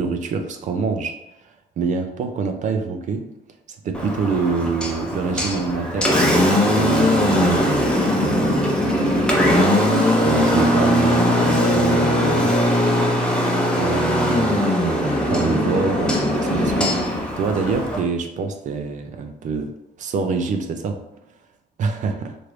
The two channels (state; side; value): normal; both; correlation 0.59